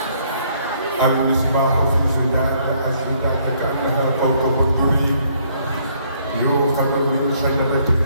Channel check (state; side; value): inverted; both; correlation -0.66